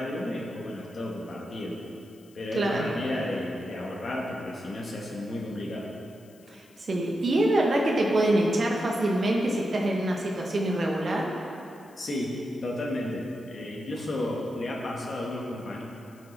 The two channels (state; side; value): noise; left; hiss, 28 dB below the sound